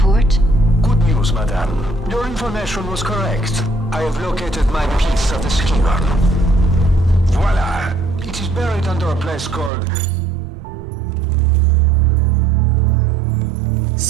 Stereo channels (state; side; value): drops out; left; at 9.7 s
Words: Good news, madame. Your information was correct. I have located my piece of the Scion. Voila! It is buried under a place called...